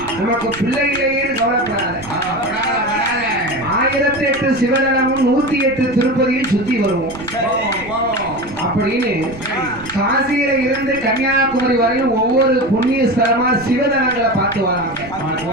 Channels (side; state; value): right; noise; rumble, 18 dB below the sound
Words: நமக்கு பிள்ளைகளையே கவலைப்படாத 1008 சிவதலமும் 108 திருப்பதியில் சுத்தி வருவோம் அப்படின்னு காசியில இருந்து கன்னியாகுமரி வரையும் ஒவ்வொரு புண்ணிய ஸ்தலமா சிவதலங்களை பார்த்து வராங்க.